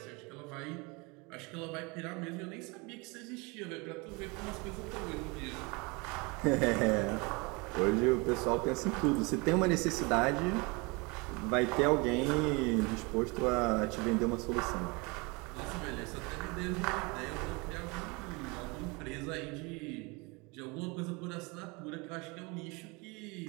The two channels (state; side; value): quieter; left; 27.7 dB